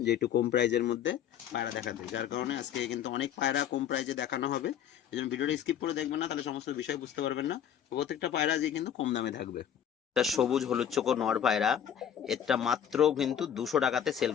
যে একটু কম প্রাইজের মধ্যে পায়রা দেখাতে, যার কারণে আজকে কিন্তু অনেক পায়রা কম প্রাইজে দেখানো হবে। এই জন্য ভিডিওটা স্কিপ করে দেখবেন না, তাহলে সমস্ত বিষয় বুঝতে পারবেন না। প্রত্যেকটা পায়রা যে কিন্তু কম দামে থাকবে। এটা সবুজ হলুদ চোখো নর পায়রা, এটা মাত্র কিন্তু 200 টাকাতে সেল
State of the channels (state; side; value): quieter; right; 9.3 dB